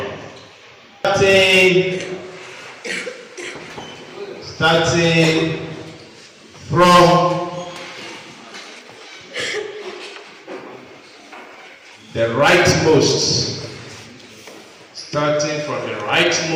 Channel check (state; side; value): identical; both; correlation 1.00